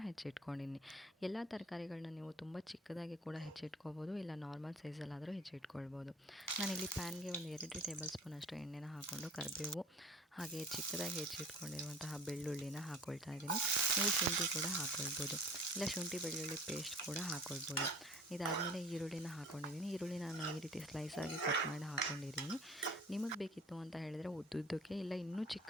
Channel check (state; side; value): normal; both; correlation 0.46